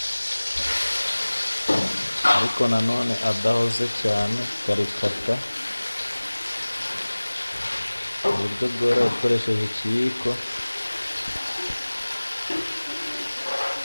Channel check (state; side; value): inverted; both; correlation -1.00